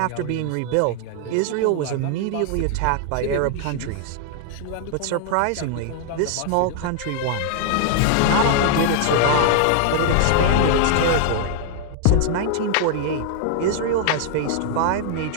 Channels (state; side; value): different; both; correlation 0.00